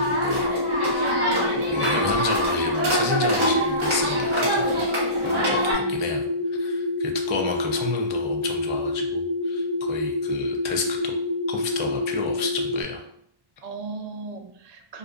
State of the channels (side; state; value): left; late; 1.1 ms